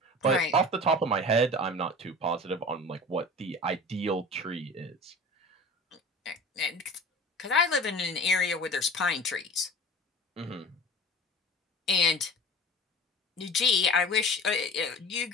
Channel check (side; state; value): both; normal; correlation 0.39